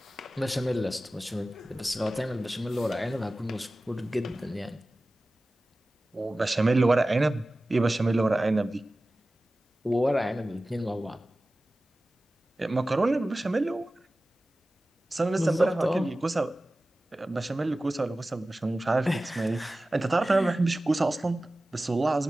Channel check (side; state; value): both; normal; correlation 0.96